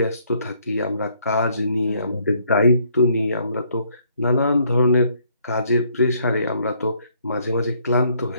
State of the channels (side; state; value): both; inverted; correlation -0.67